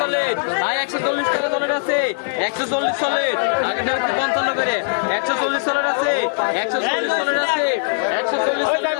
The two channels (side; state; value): right; silent; digital silence